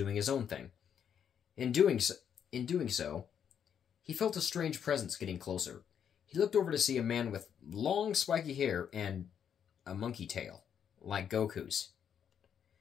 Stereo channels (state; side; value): quieter; right; 8.3 dB